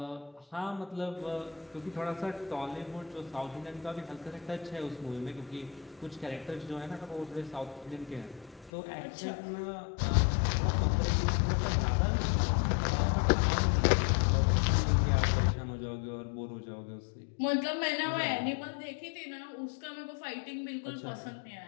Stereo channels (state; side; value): drops out; right; at 8.7 s